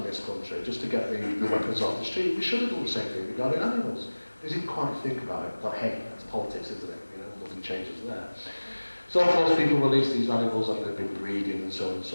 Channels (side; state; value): both; inverted; correlation -1.00